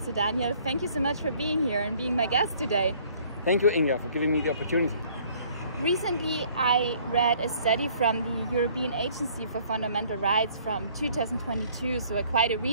So Daniel, thank you so much for being here and being my guest today. Thank you, Inga, for giving me the opportunity. Recently, I read a study from the European Agency for Fundamental Rights from 2022, so quite a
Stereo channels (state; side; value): inverted; both; correlation -0.58